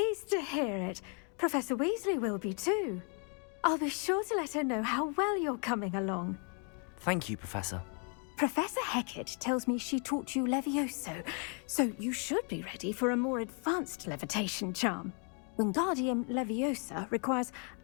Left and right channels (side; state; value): right; quieter; 39.7 dB